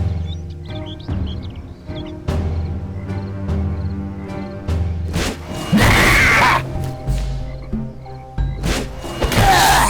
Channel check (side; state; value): both; identical; correlation 1.00